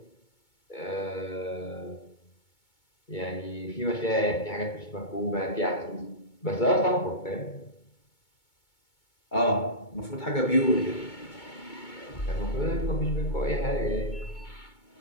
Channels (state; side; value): late; right; 2.2 ms